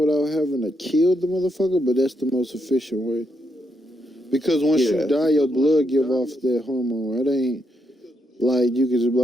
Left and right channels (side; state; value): both; normal; correlation 0.79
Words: having to kill the motherfucker, but that's the most efficient way. Because once you yeah, die, your blood give off that hormone. It ain't like you can just be